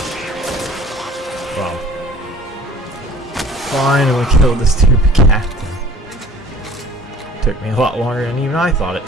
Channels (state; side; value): normal; both; correlation 0.48